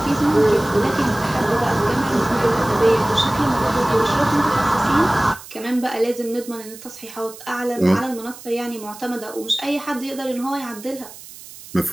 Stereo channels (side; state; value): right; noise; hiss, 17 dB below the sound